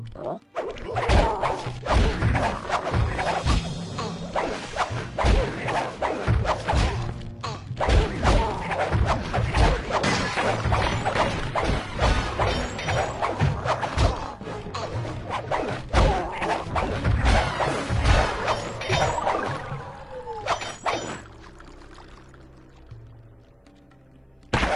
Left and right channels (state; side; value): identical; both; correlation 1.00